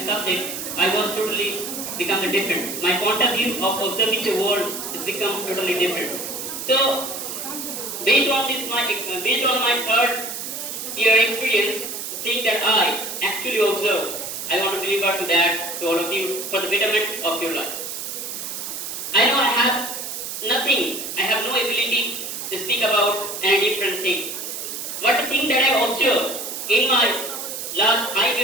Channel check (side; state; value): right; noise; hiss, 6 dB below the sound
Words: subject, I was totally become different. My point of view of observing the world has become totally different. So based on my third year experience, the thing that I actually observed, I want to deliver to that to all of you for the betterment of your life. I know I have nothing, I have no ability to speak about any different thing. But the thing that I observed in my last 5